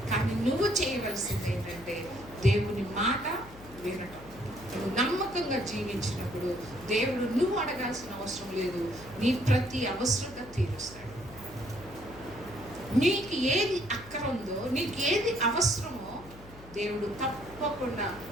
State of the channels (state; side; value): noise; left; hum, 19 dB below the sound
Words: కానీ నువ్వు చేయవలసింది ఏంటంటే దేవుని మాట వినటం. నువ్వు నమ్మకంగా జీవించినప్పుడు దేవుడు నువ్వు అడగాల్సిన అవసరం లేదు, నీ ప్రతి అవసరత తీరుస్తాడు. నీకు ఏది అక్కర ఉందో, నీకు ఏది అవసరమో దేవుడు తప్పకుండా